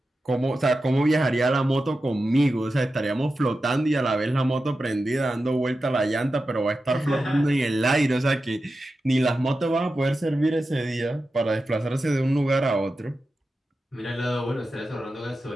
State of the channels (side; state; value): both; normal; correlation 0.92